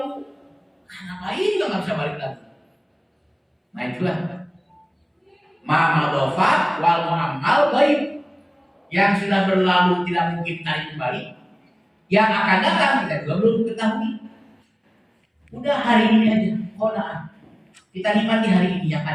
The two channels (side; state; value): both; identical; correlation 1.00